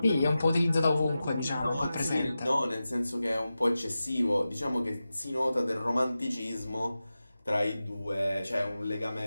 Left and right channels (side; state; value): both; inverted; correlation -0.93